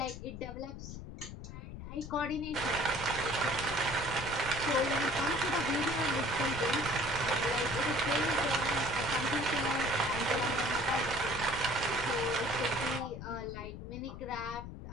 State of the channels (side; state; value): left; noise; rumble, 10 dB below the sound